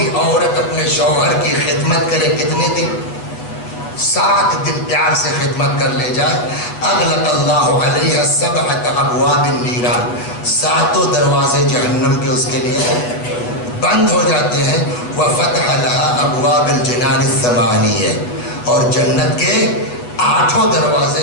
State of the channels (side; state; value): right; late; 8.2 ms